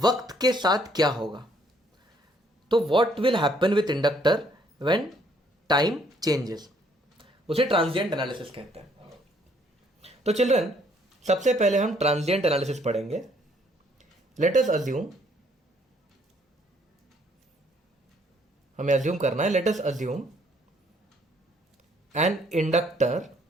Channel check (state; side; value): normal; both; correlation 0.65